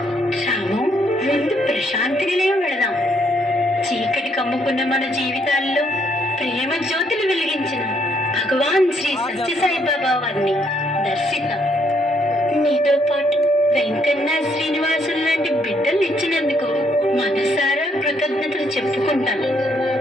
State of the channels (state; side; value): normal; both; correlation 0.71